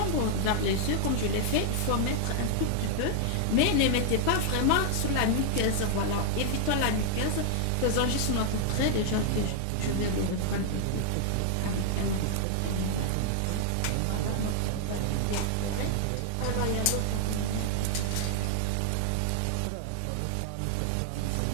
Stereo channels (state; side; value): different; both; correlation 0.00